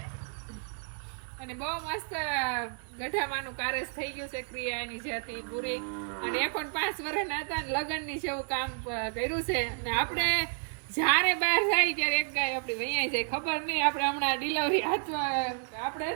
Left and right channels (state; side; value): silent; left; 57 dB below the other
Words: અને બહુ મસ્ત ગઢામાંનું કારેસ થઈ ગયું છે. ક્રિયા એની જે હતી પૂરી અને એ પણ 5 વર્ષના હતા ને લગ્નની જેવું કામ કર્યું છે. અને આપણે જ્યારે બહાર જાય ત્યારે એક ગાય આપણી વૈયાઈ જાય ખબર નહીં. આપણે હમણાં ડિલિવરી હાથમાં આપણે